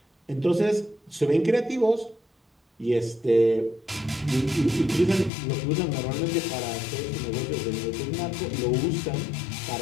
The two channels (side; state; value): right; drops out; at 5.3 s